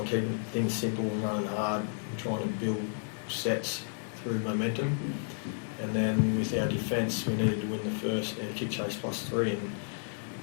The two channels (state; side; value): silent; right; digital silence